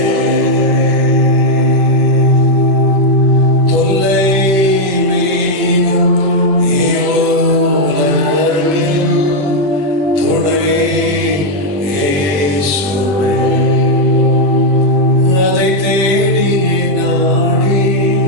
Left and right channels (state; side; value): late; left; 20 ms